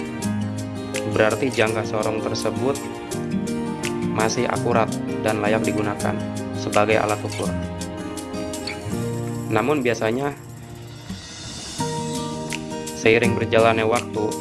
berarti jangka sorong tersebut masih akurat dan layak digunakan sebagai alat ukur. Namun biasanya seiring berjalannya waktu,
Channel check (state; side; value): identical; both; correlation 1.00